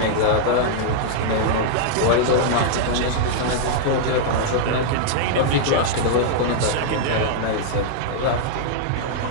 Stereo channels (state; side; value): different; both; correlation -0.01